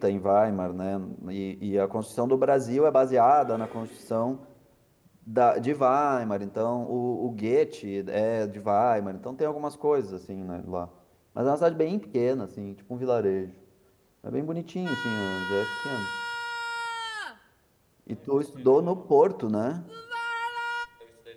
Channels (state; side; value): identical; both; correlation 1.00